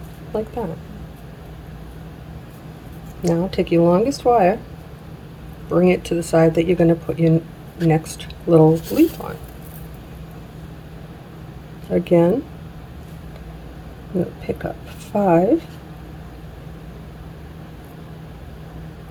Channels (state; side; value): identical; both; correlation 1.00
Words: Like that. Now take your longest wire, bring it to the side that you're going to put your next little leaf on. Again, I'm going to pick up 5.